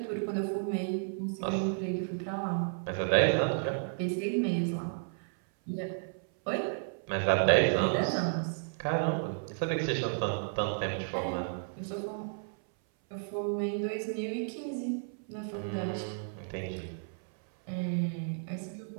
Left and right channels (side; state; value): left; silent; 56 dB below the other